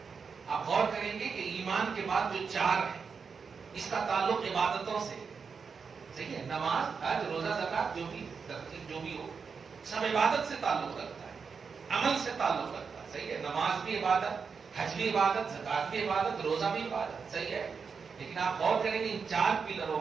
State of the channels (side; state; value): left; quieter; 5.6 dB